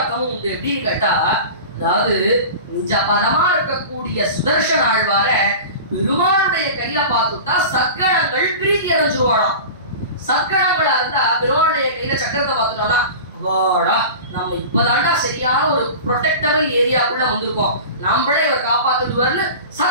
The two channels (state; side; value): inverted; both; correlation -0.34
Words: உண்டு. எப்படின்னு கேட்டா, அதாவது நிஜ பதமா இருக்கக்கூடிய சுதர்சன ஆழ்வார பெருமாளுடைய கையில பார்த்துட்டா சத்கணங்கள் பிரீதி அடைஞ்சிருவாளாம். சத்கணங்களா இருந்தா பெருமாளுடைய கையில சக்கரத்தை பார்த்துட்டோம்னா, வாடா நம்ம இப்பதாண்டா சரியான ஒரு ப்ரொடெக்டபிள் ஏரியாக்குள்ள வந்திருக்கோம், நம்மளே இவர் காப்பாத்துடுவார்னு